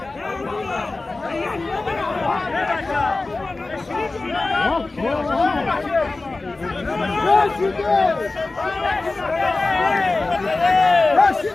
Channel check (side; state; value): right; quieter; 3.3 dB